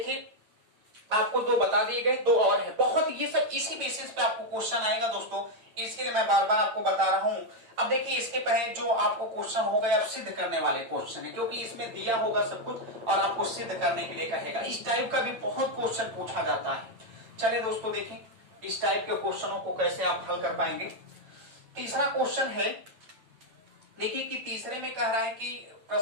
आपको 2 बता दिए गए, 2 और है। बहुत ये सब इसी बेसिस पे आपको क्वेश्चन आएगा दोस्तों, इसके लिए मैं बार बार आपको बता रहा हूं। अब देखिए इसके पहले जो आपको क्वेश्चन हो गए, अब सिद्ध करने वाले क्वेश्चन है, क्योंकि इसमें दिया होगा सब कुछ और आपको सिद्ध करने के लिए कहेगा। इस टाइप का भी बहुत क्वेश्चन पूछा जाता है। चलिए दोस्तों देखें इस टाइप के क्वेश्चनों को कैसे आप हल कर पाएंगे। तीसरा क्वेश्चन है, देखिए कि तीसरे में कह रहा है कि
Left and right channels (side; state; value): left; late; 8.9 ms